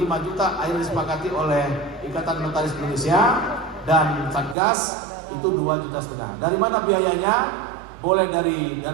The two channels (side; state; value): left; drops out; at 4.5 s